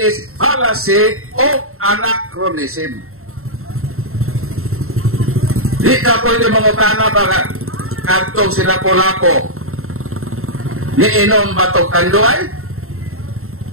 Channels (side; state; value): left; late; 0.62 ms